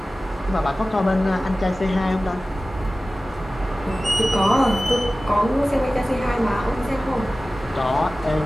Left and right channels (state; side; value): normal; both; correlation 0.96